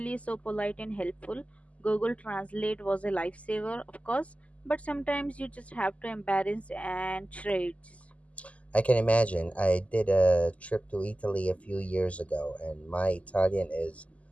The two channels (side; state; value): right; late; 0.067 ms